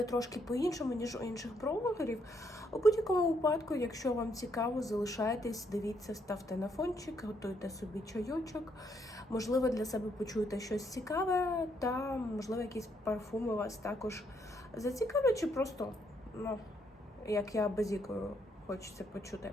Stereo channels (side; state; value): both; normal; correlation 0.73